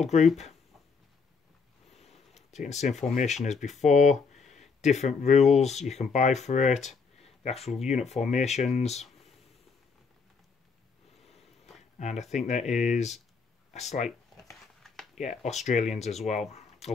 Group, taking the same formation as before, different rules you can buy for it, the actual unit formations, and I think there is a slight, yeah, Australians as well,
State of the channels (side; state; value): right; quieter; 5.1 dB